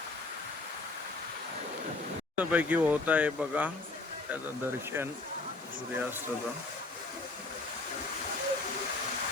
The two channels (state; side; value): quieter; right; 3.3 dB